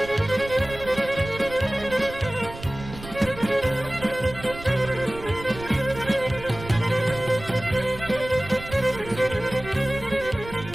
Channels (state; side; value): noise; right; rumble, 14 dB below the sound